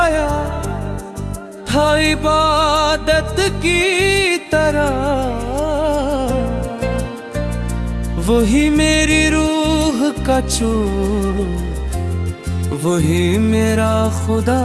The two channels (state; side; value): identical; both; correlation 1.00